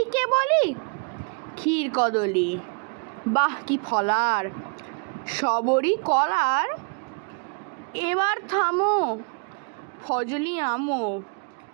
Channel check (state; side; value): quieter; left; 37.0 dB